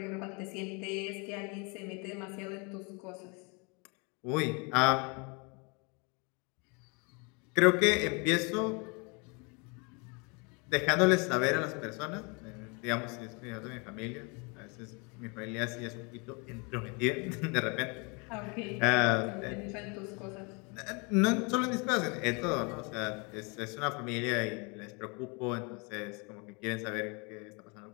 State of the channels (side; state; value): right; quieter; 31.7 dB